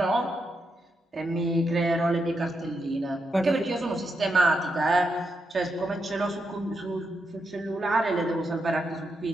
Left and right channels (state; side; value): normal; both; correlation 0.83